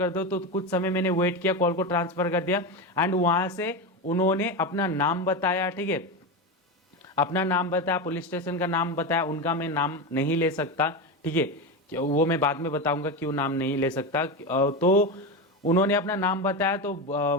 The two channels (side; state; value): both; normal; correlation 0.17